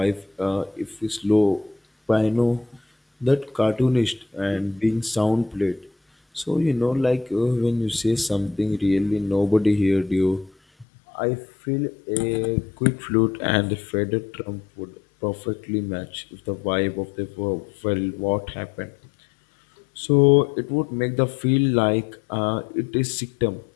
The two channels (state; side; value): drops out; right; at 10.9 s